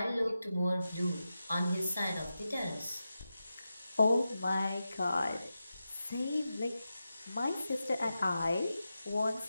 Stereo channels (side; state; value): both; inverted; correlation -0.92